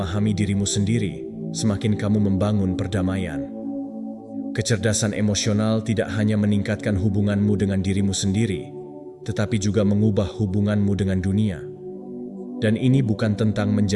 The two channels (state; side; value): identical; both; correlation 1.00